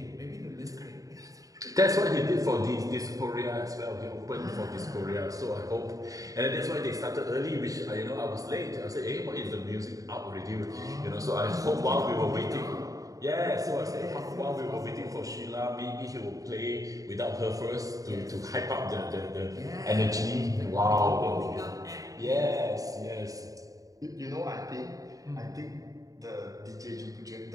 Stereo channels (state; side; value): late; left; 0.17 ms